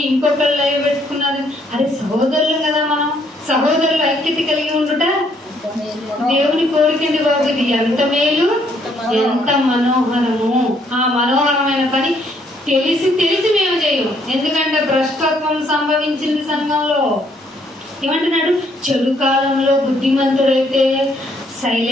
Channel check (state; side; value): normal; both; correlation 0.68